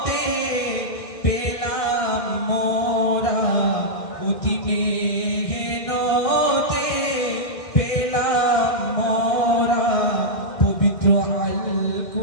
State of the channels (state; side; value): late; right; 1.6 ms